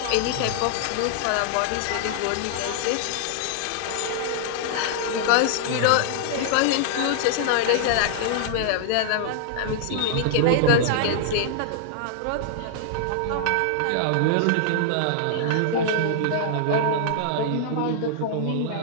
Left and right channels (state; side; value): different; both; correlation -0.01